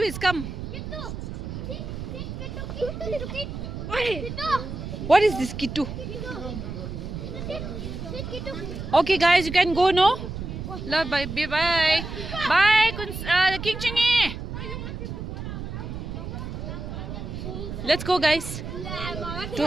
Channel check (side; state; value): right; noise; rumble, 7 dB below the sound